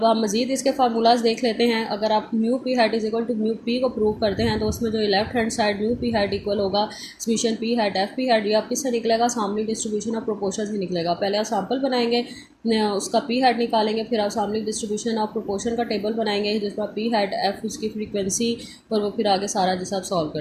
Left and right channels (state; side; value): identical; both; correlation 1.00